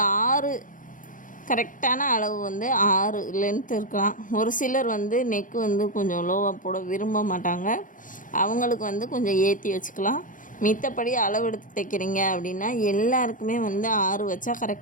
6 கரெக்டான அளவு வந்து 6 லென்த் இருக்கலாம். ஒரு சிலர் வந்து நெக்கு வந்து கொஞ்சம் லோவாக போட விரும்ப மாட்டாங்க, அவங்களுக்கு வந்து கொஞ்சம் ஏற்றி வச்சுக்கலாம். மித்தபடி அளவு எடுத்து தைக்கிறீங்க அப்படின்னா எல்லாருக்குமே வந்து 6 வச்சா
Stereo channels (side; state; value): right; late; 0.38 ms